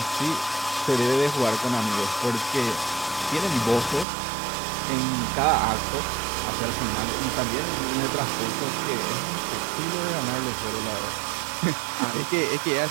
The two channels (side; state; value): left; drops out; at 4.0 s